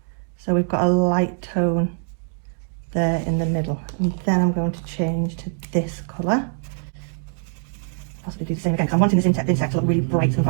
so we've got a light tone there in the middle, and then I'm going to change to this colour. Possibly do the same again because I'm wanting this insect to look really bright and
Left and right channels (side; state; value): left; silent; 56 dB below the other